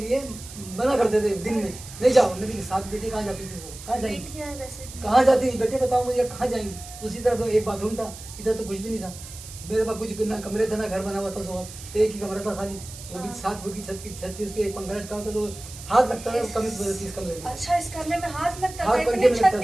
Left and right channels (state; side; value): noise; right; hiss, 14 dB below the sound